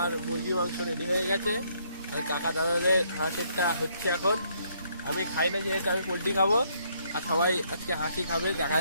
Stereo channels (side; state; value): both; inverted; correlation -0.70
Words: মুরগি মাংস রেডি হয়ে গেছে। আর কাকা দাদাদের হাঁসেরটা হচ্ছে এখন। আমি খাই না যেহেতু, আমি পোলট্রি খাবো। আর সবাই আজকে হাসি খাবে, দেখা